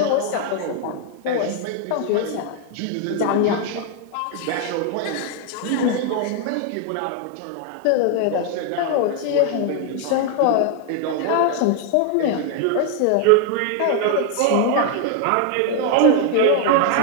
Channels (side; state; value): both; different; correlation 0.00